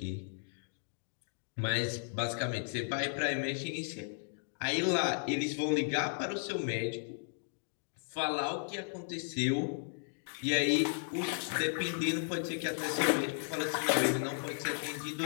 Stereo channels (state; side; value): silent; right; digital silence